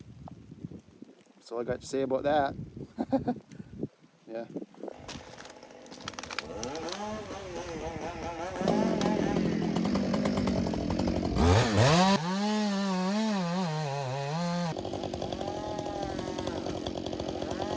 That's all I got to say about that. Yeah.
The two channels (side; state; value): both; identical; correlation 1.00